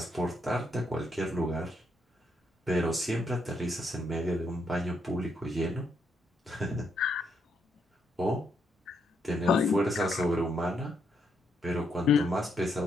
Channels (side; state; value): both; normal; correlation 0.77